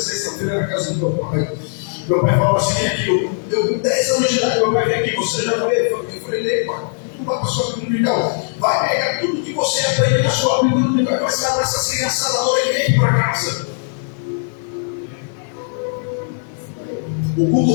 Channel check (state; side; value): silent; right; digital silence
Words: sextas-feiras na casa do meu pai. Meu pai falava assim: vem aqui, eu com 10 anos de idade, meu pai vem aqui, você já veio? Eu falei: lê, pai, tu vai para a sua dominical, vai pegar tudo que você aprende na sua Bíblia dominical e vai passar para essa criançada agora e vem para casa. O culto